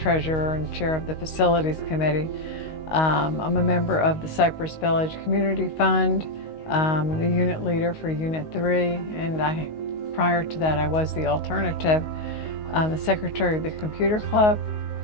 and chair of the Facilities Committee. I'm a member of the Cypress Village Community Fund, the unit leader for Unit 3, and prior to that I was the alternative, the secretary of the Computer Club,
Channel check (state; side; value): late; right; 19 ms